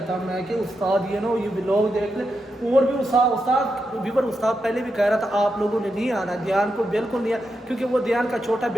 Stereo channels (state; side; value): normal; both; correlation 0.86